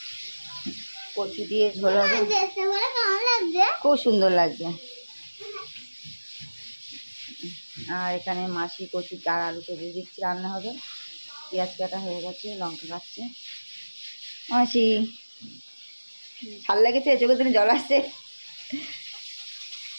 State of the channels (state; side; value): inverted; both; correlation -1.00